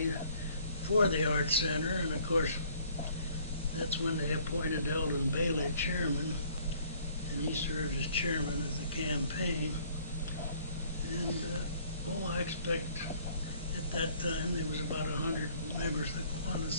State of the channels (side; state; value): both; inverted; correlation -0.59